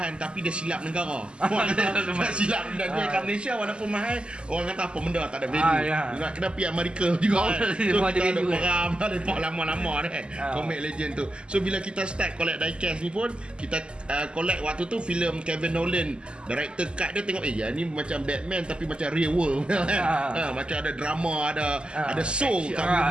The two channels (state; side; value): late; left; 0.051 ms